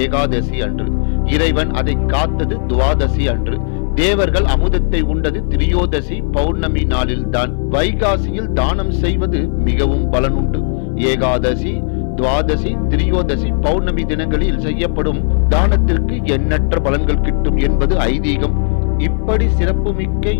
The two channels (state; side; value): silent; right; digital silence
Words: ஏகாதசி அன்று. இறைவன் அதை காத்தது துவாதசி அன்று. தேவர்கள் அமுதத்தை உண்டது திரியோதசி பௌர்ணமி நாளில்தான். வைகாசியில் தானம் செய்வது மிகவும் பலனுண்டு. ஏகாதசி, துவாதசி, திரியோதசி பௌர்ணமி தினங்களில் செய்யப்படும் தானத்திற்கு எண்ணற்ற பலன்கள் கிட்டும் என்பது ஐதீகம். இப்படி சிறப்புமிக்க